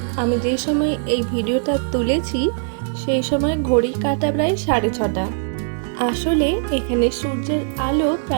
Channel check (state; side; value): silent; left; 65 dB below the other